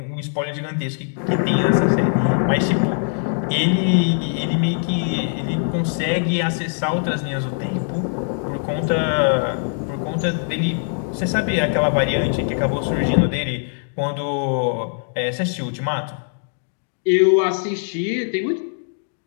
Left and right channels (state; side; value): silent; right; digital silence